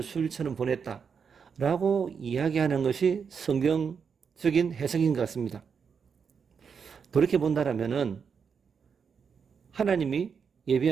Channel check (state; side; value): quieter; left; 6.4 dB